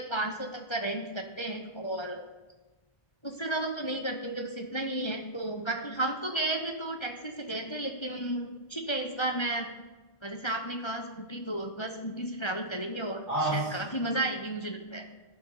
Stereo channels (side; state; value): right; late; 1.3 ms